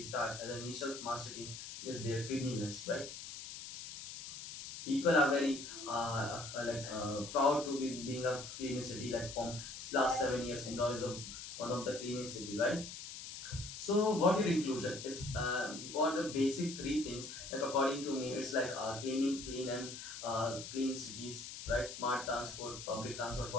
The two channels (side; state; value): left; noise; hiss, 10 dB below the sound